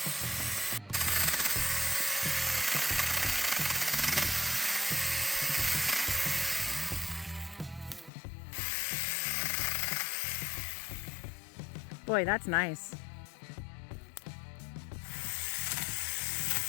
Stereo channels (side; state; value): right; drops out; at 8.1 s